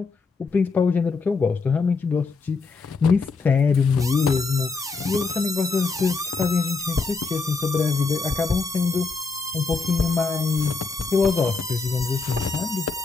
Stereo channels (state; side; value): quieter; right; 4.4 dB